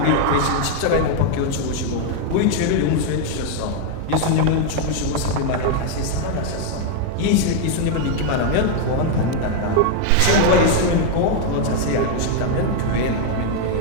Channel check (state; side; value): different; both; correlation 0.00